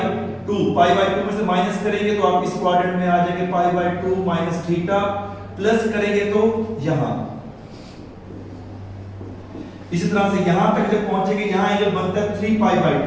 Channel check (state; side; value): identical; both; correlation 1.00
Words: 2। पाई बाय 2 में से माइनस करेंगे तो आप इस क्वाड्रेंट में आ जाएंगे pi by 2 minus theta, plus करेंगे तो यहां इसी तरह से यहां तक जब पहुंचेंगे यहां एंगल बनता है 3 पाई बाय